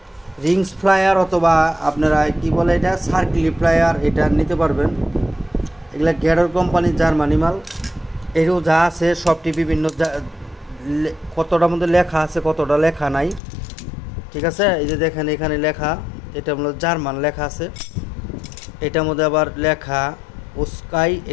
রিংস ফ্লায়ার অথবা আপনারা কি বলে এটা সার্কেল ফ্লায়ার, এটা নিতে পারবেন। এগুলা গ্যাডর কোম্পানির জার্মানি মাল। এরও যা আছে সবটি বিভিন্ন, কতটার মধ্যে লেখা আছে কতটা লেখা নাই। ঠিক আছে, এই যে দেখেন এখানে লেখা, এটা হলো জার্মান লেখা আছে, এটার মধ্যে আবার লেখা ওস্কাই,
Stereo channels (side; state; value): right; drops out; at 13.4 s